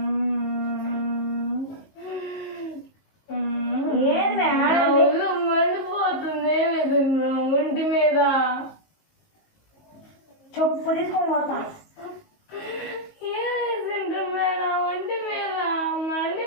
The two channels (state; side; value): late; right; 19 ms